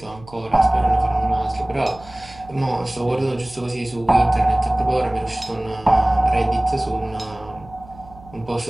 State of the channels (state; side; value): noise; right; hum, 21 dB below the sound